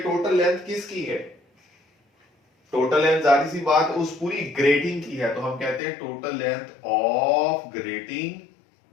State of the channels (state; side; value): drops out; right; at 5.8 s